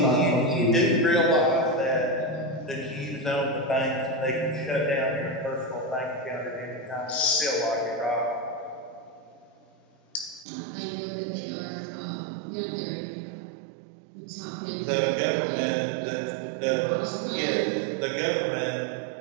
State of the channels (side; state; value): left; drops out; at 10.5 s